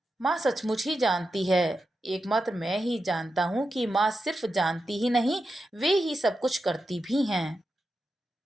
माँ सचमुच ही जानती है। एकमात्र मैं ही जानता हूँ कि माँ सिर्फ जानती ही नहीं, वे ही सब कुछ करती भी हैं।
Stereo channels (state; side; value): normal; both; correlation 0.89